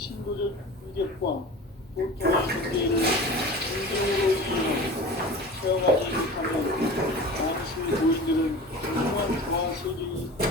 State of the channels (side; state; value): both; normal; correlation 0.36